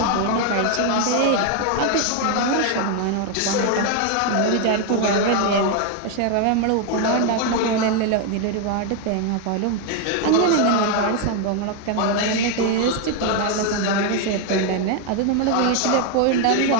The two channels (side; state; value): both; different; correlation 0.01